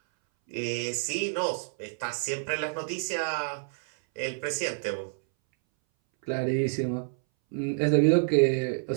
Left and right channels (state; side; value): silent; left; 59 dB below the other